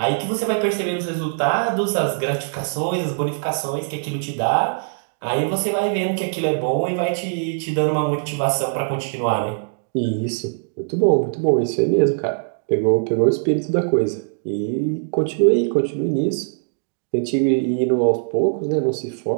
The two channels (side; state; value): left; silent; digital silence